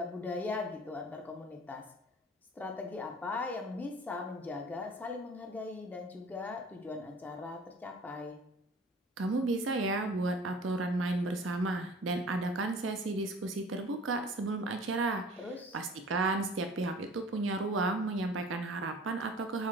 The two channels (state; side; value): normal; both; correlation 0.46